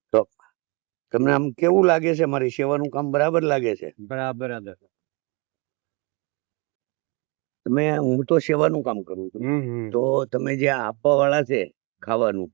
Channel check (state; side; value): quieter; left; 29.4 dB